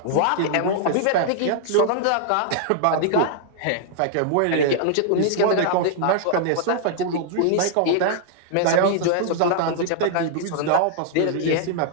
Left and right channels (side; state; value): both; different; correlation -0.01